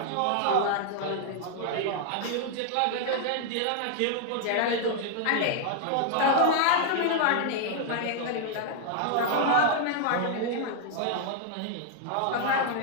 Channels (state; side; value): different; both; correlation 0.00